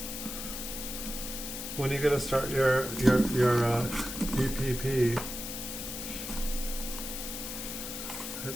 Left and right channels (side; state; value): left; noise; hiss, 6 dB below the sound